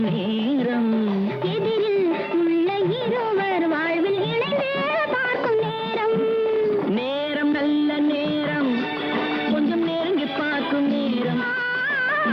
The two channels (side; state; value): both; identical; correlation 1.00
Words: நேரம் எதிரில் உள்ள இருவர் வாழ்வில் இணைந்து பார்க்கும் நேரம் நேரம் நல்ல நேரம் கொஞ்சம் நெருங்கி பார்க்கும் நேரம்